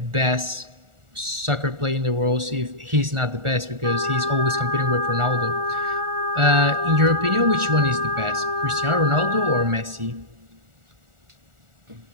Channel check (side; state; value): left; late; 1.4 ms